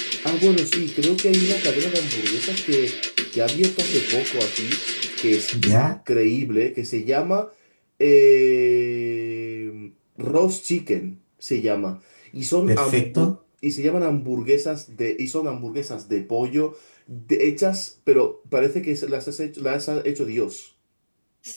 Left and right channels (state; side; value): inverted; both; correlation -1.00